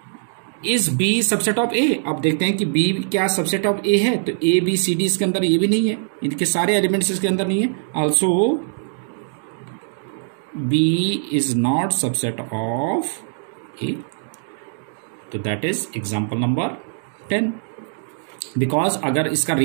B subset of A? अब देखते हैं कि बी क्या सबसेट ऑफ ए है, तो ए बी सी डी इसके अंदर ये भी नहीं है, इनके सारे एलिमेंट्स इसके अंदर नहीं है। Also B is not subset of A, तो that is example number 10. Because अगर इसका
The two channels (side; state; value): left; silent; digital silence